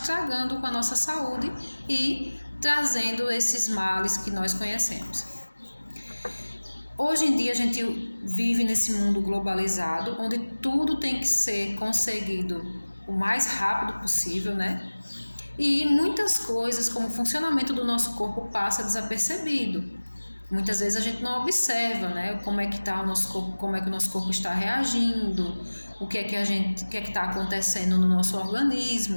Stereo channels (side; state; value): both; inverted; correlation -1.00